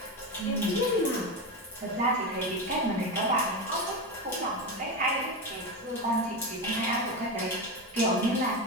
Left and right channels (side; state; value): both; normal; correlation 0.17